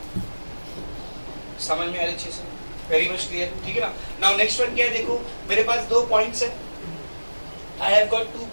समझ में आ रही अच्छे से? वेरी मच क्लियर, ठीक है ना? नाउ नेक्स्ट वन क्या है, देखो मेरे पास 2 पॉइंट्स है, आई हैव गॉट 2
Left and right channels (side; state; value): both; inverted; correlation -1.00